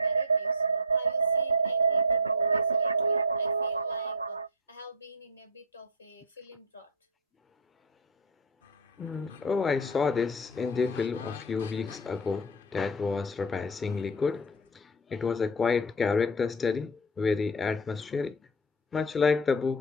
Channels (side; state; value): both; normal; correlation 0.07